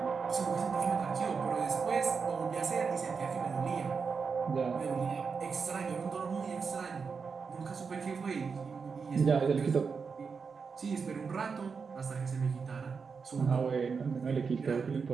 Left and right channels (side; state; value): left; quieter; 5.4 dB